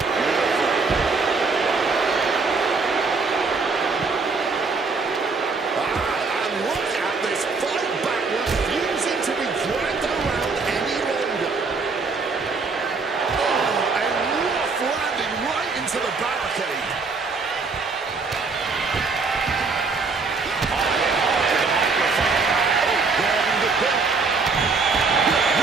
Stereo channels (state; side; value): quieter; left; 4.3 dB